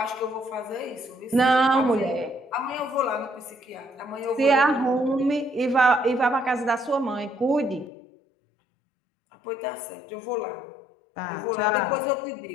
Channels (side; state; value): right; drops out; at 7.9 s